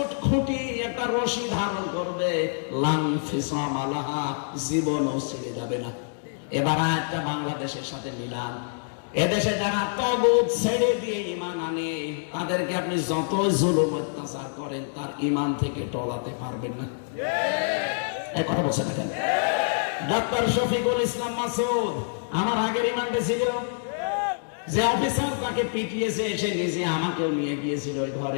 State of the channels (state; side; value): silent; right; digital silence